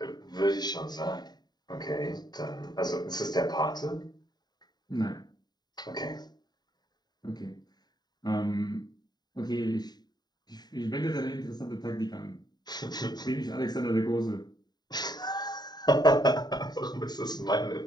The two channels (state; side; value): late; right; 0.20 ms